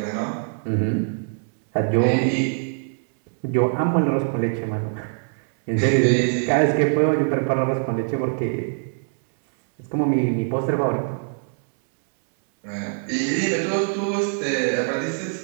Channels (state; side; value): silent; left; 63 dB below the other